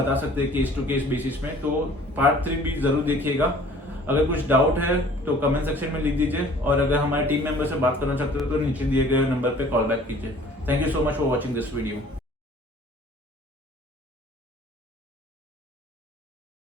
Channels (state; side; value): normal; both; correlation 0.51